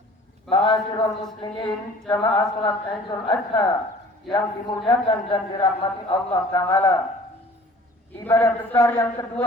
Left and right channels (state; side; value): normal; both; correlation 0.49